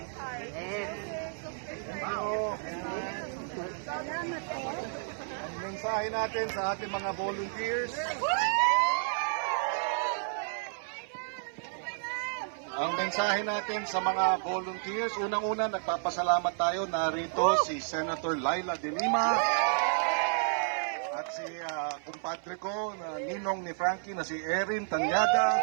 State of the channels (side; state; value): left; silent; 56 dB below the other